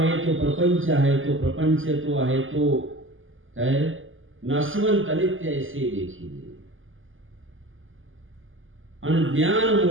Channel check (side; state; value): left; late; 0.58 ms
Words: तो प्रपंच आहे, तो प्रपंच तो आहे तो काय नाशवंत अनित्य ऐसे देखील. आणि ज्ञान